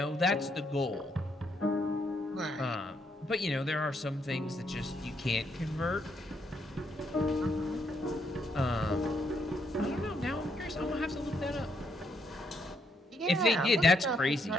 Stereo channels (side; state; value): both; normal; correlation 0.75